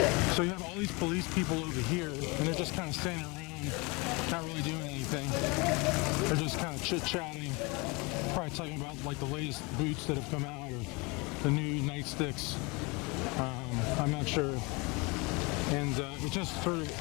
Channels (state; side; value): quieter; right; 27.7 dB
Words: So you have all these police people over here, and they're just kind of standing around, not really doing anything. They're just kind of chit-chatting, probably talking about like the latest boots that have come out or the new nightsticks. I'm not sure. And it just sort of,